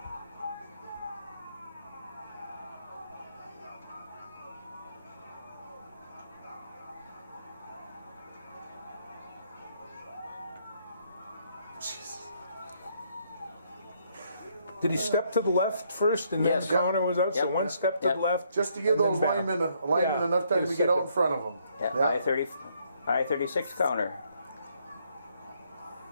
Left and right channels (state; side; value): inverted; both; correlation -0.71